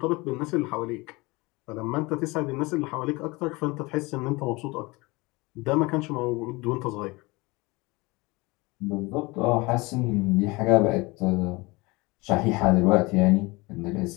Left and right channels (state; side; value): quieter; right; 24.0 dB